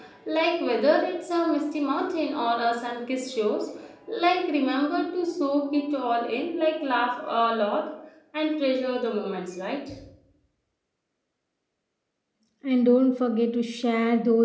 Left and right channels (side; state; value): both; identical; correlation 1.00